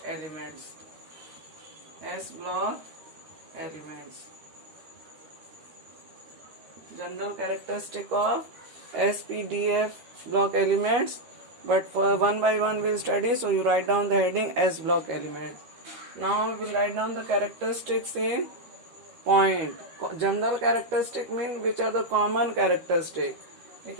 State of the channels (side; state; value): left; late; 13 ms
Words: elements. S block elements. General characteristic of SPDF block elements, but for one by one we'll study, so you write down the heading S block elements. Now we will write down the characteristics in point. General characteristic means which are the common characteristic.